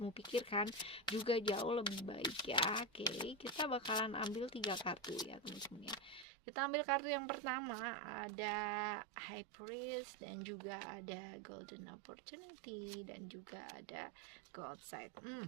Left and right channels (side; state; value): left; drops out; at 6.2 s